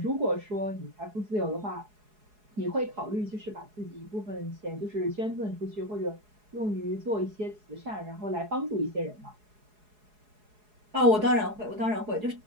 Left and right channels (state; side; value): late; left; 4.8 ms